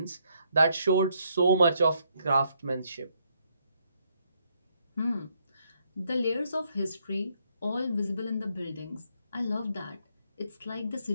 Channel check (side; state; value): both; inverted; correlation -0.73